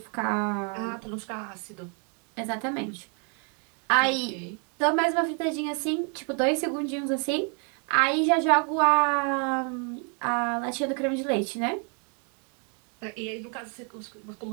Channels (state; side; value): quieter; left; 39.3 dB